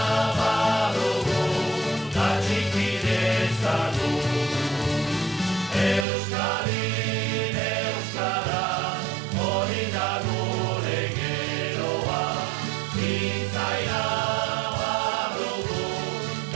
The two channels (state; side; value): drops out; left; at 6.1 s